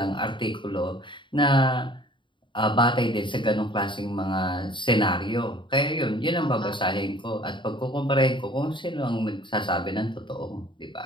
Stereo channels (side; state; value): right; late; 0.23 ms